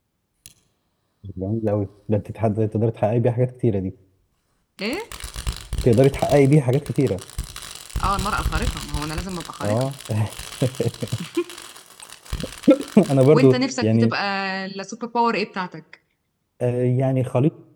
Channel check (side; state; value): both; identical; correlation 1.00